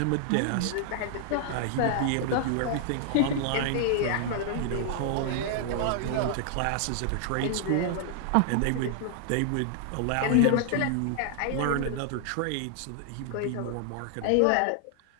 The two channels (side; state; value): both; different; correlation 0.00